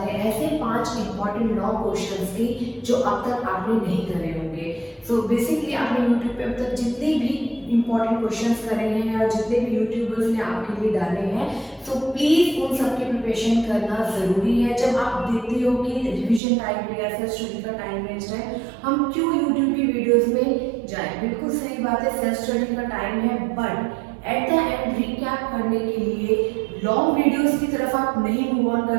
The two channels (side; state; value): left; drops out; at 16.4 s